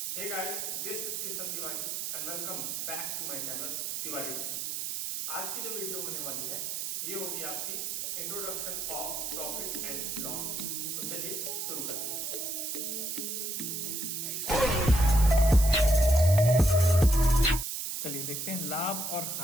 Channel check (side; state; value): right; noise; hiss, 3 dB below the sound